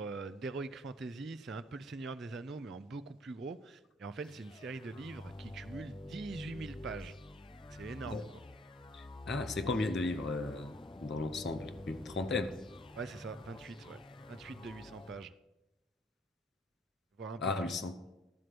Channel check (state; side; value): normal; both; correlation 0.62